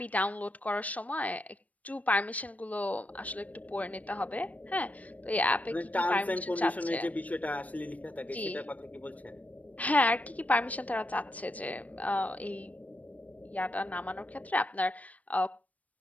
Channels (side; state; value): right; late; 0.070 ms